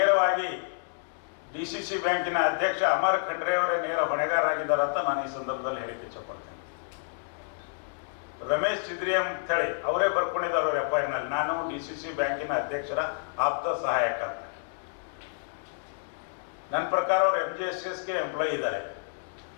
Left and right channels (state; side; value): silent; right; digital silence